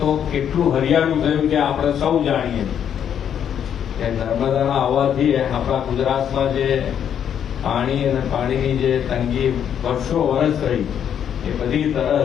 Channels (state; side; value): quieter; right; 8.9 dB